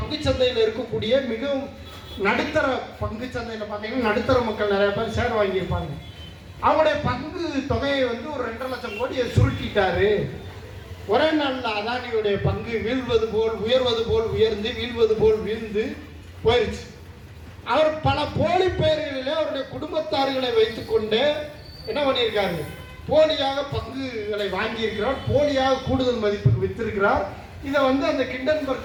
சந்தையில் இருக்கக்கூடிய மிகவும் நடுத்தர பங்கு சந்தையில் பார்த்தீங்கன்னா நடுத்தர மக்கள் நிறைய பேர் ஷேர் வாங்கியிருப்பாங்க. அவருடைய பங்கு தொகையை ஒரு 2.5 லட்சம் கோடியை சுருட்டிட்டாரு. ஒரே நாளில் அதானியுடைய பங்கு வீழ்வது போல் உயர்வது போல் உயர்ந்து வீழ்வது போல் வீழ்ந்து போயிடுச்சு. அவர் பல போலி பெயர்களிலே அவருடைய குடும்பத்தார்களை வைத்துக்கொண்டு என்ன பண்ணியிருக்காரு? போலியாக பங்குகளை வாங்கியிருக்கிறார், போலியாக கூடுதல் மதிப்புக்கு வித்திருக்கிறார். இதை அந்த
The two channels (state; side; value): identical; both; correlation 1.00